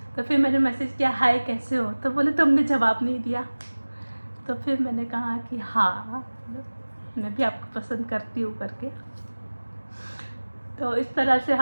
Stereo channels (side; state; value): both; inverted; correlation -1.00